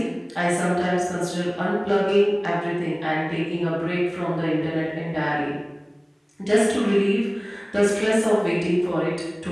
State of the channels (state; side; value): identical; both; correlation 1.00